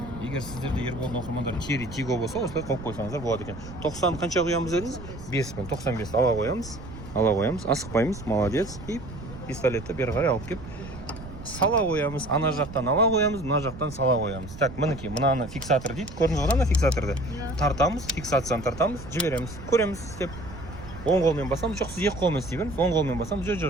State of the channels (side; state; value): right; noise; rumble, 13 dB below the sound